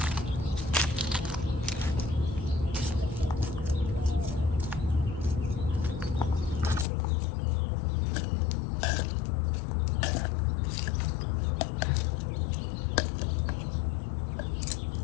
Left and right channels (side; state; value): right; drops out; at 6.9 s